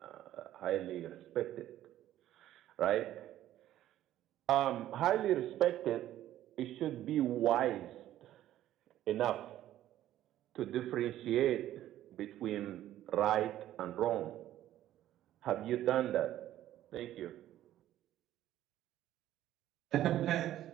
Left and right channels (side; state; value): left; quieter; 13.0 dB